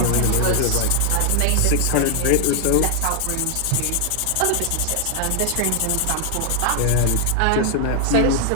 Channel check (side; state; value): both; different; correlation 0.00